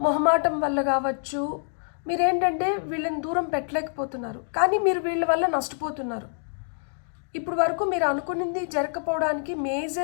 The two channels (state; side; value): silent; right; digital silence